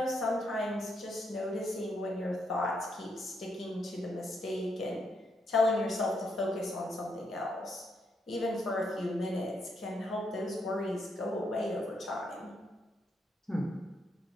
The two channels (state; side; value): normal; both; correlation 0.78